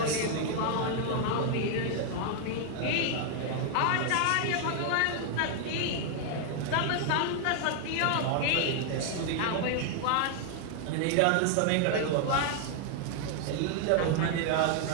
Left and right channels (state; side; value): different; both; correlation 0.00